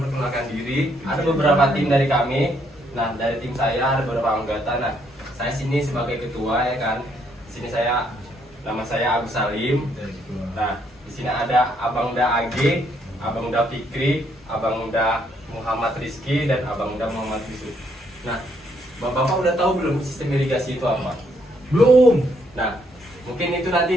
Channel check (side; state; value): both; normal; correlation 0.71